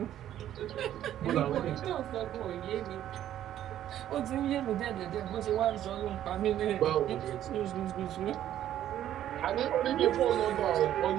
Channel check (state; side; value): quieter; left; 11.7 dB